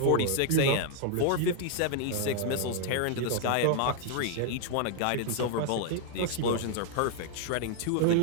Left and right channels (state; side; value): different; both; correlation 0.00